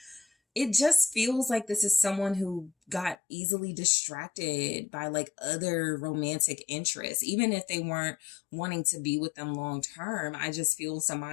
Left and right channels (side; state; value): right; drops out; at 3.2 s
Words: it just feels like this is someone who got easily distracted by like other romantic interests, even if they weren't wanting to be with them long term. I just feel